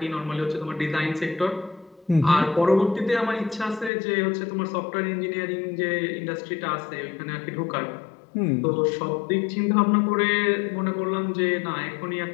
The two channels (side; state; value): right; drops out; at 3.9 s